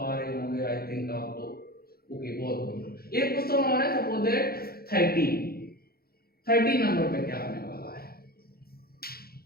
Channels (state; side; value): late; right; 0.44 ms